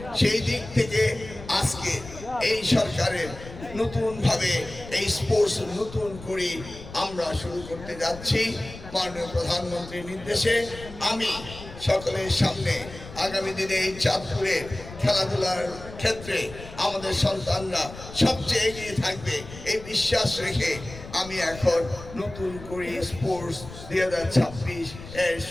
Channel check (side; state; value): left; noise; rumble, 14 dB below the sound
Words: সেই দিক থেকে আজকে এই সরকারের নতুনভাবে এই স্পোর্টস নতুন করে আমরা শুরু করতে যাচ্ছি মাননীয় প্রধানমন্ত্রীর নির্দেশে। আমি সকলের সামনে আগামী দিনে এই চাঁদপুরের খেলাধুলার ক্ষেত্রে আমাদের সন্তানরা সবচেয়ে এগিয়ে থাকবে এই বিশ্বাস রেখে আমি এখন নতুন করে স্পোর্টস 2026 এর